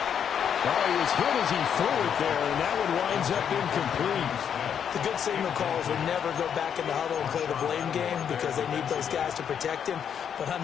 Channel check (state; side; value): quieter; right; 8.2 dB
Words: Oh, he was hit as he threw it there, and that one winds up incomplete. The good signal calls will never go back in the huddle and play the blame game because they need those guys to protect him. But